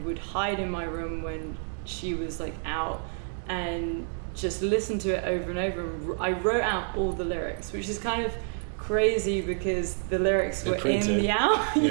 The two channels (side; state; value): left; silent; 58 dB below the other